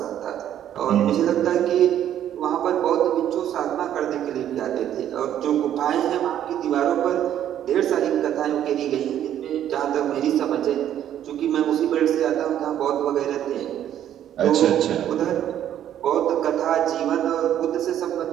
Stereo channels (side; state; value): left; quieter; 10.8 dB